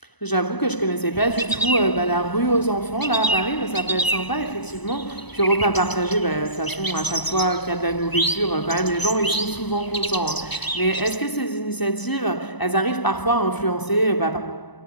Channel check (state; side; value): late; right; 1.0 ms